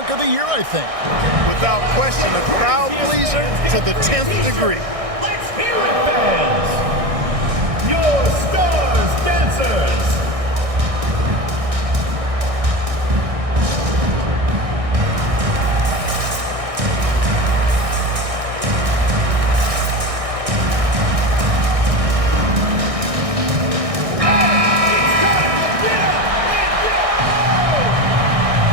of the year, I think. Without question, a crowd pleaser to the 10th degree. Let's hear it, fans! Your stars dancers!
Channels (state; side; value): late; left; 1.6 ms